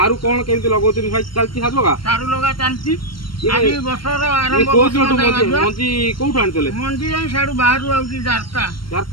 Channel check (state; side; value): late; right; 0.73 ms